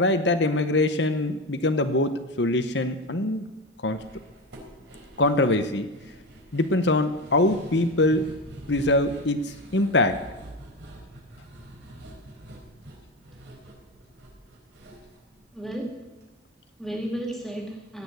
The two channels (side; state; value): both; normal; correlation 0.20